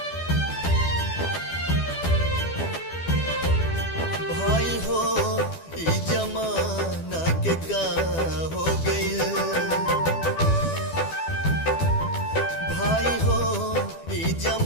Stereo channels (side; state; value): right; late; 12 ms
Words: भाई हो ई जमाना के का हो गइल, भाई हो ई